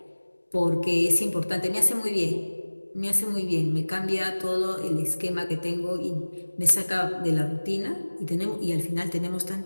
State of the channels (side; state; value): both; inverted; correlation -1.00